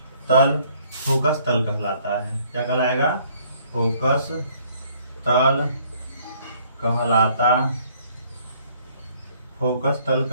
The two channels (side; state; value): both; inverted; correlation -0.62